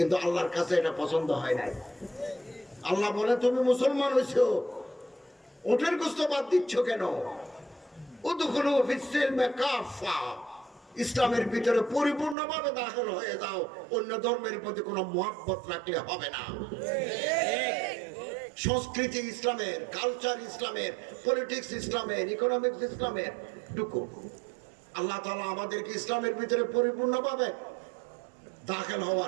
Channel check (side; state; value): left; drops out; at 12.4 s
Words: আল্লাহর কাছে এটা পছন্দ হয় নাই। আল্লাহ বলে, তুমি মুসলমান হয়েছো, ওটার গোশত বাদ দিচ্ছ কেন? উদখুলু ফিস সিলমি কাফা। ইসলামের ভিতরে পরিপূর্ণভাবে দাখিল হয়ে যাও। অন্য ধর্মের প্রতি কোনো মহব্বত রাখলে হবে না। সংস্কৃতি ইসলামের, কালচার ইসলামের, পলিটিক্স ইসলামের, ইকোনমিক্স ইসলামের ঢুকো। আল্লাহ তাআলা আমাদেরকে ইসলামের ভিতরে পরিপূর্ণভাবে দাখিল